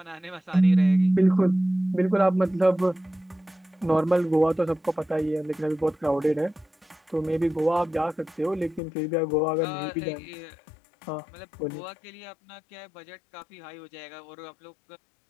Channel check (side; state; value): right; drops out; at 8.8 s